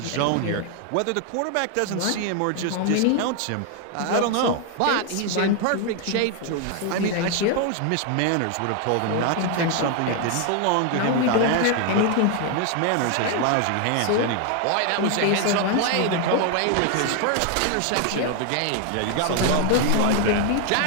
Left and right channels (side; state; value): both; different; correlation 0.01